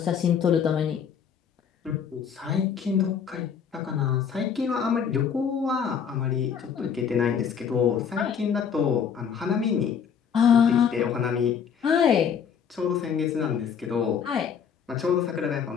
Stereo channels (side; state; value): right; quieter; 7.3 dB